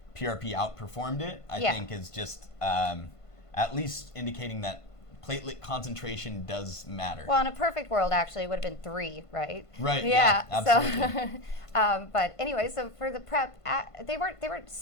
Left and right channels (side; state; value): right; late; 1.5 ms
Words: PRP outperformed it, I think, is just at least indicating that platelet concentration does matter. Well, in a perfect world, actually, it would have been 3, right? Right. Yeah. Absolutely. So, but anyway, so for the prep, they weren't